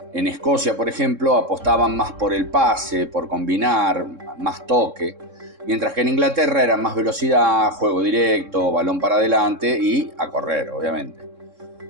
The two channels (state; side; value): late; left; 3.7 ms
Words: En Escocia, por ejemplo, apostaban más por el pase, por combinar, más toque, mientras que en Inglaterra era más velocidad, juego directo, balón para adelante y a correr, obviamente.